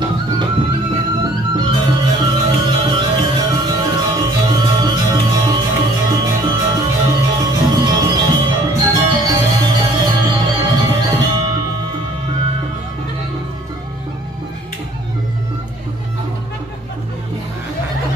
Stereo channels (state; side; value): normal; both; correlation 0.56